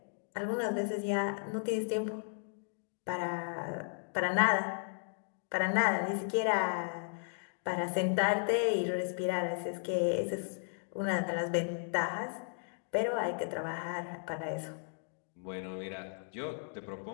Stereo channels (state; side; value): silent; right; digital silence